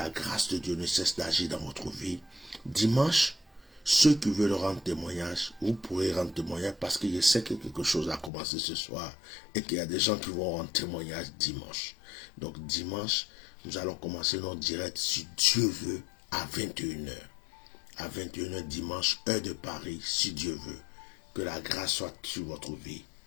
grâce de Dieu ne cesse d'agir dans votre vie. Dimanche, ceux qui veulent rendre témoignage, vous pourrez rendre témoignage parce que je sais que quelque chose a commencé ce soir et qu'il y a des gens qui vont rendre témoignage dimanche. Donc dimanche, nous allons commencer notre direct, si Dieu veut, à 21h. À 21h dimanche, heure de Paris, si Dieu veut. Que la grâce soit sur votre vie.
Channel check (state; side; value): drops out; right; at 8.3 s